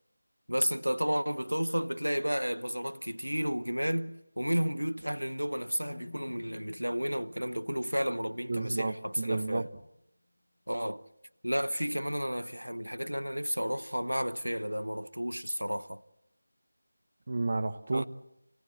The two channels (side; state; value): both; inverted; correlation -0.99